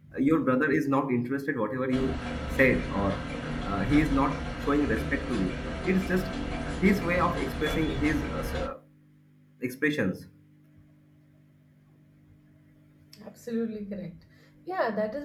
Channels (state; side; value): identical; both; correlation 1.00